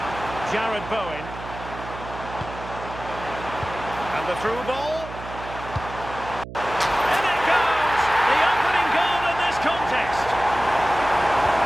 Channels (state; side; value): noise; right; hum, 12 dB below the sound